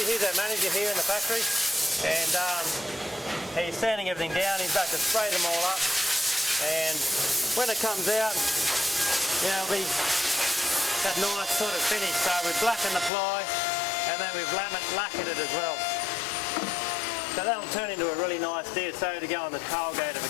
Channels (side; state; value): right; drops out; at 13.1 s